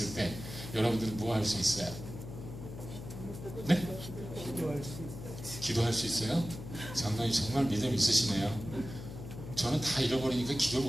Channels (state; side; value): noise; left; hum, 10 dB below the sound